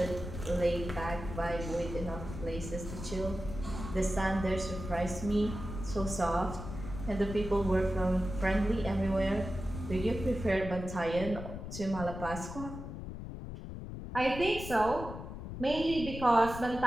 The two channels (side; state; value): left; noise; rumble, 8 dB below the sound